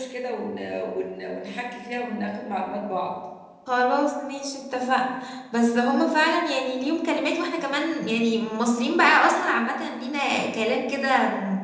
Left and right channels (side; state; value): both; identical; correlation 1.00